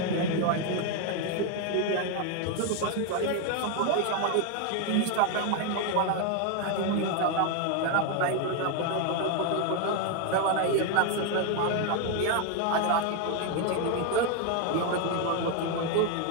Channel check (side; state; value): both; different; correlation 0.01